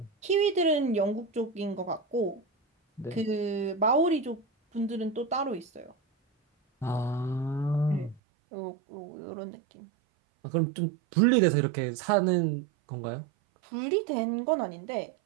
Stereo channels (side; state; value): left; drops out; at 8.2 s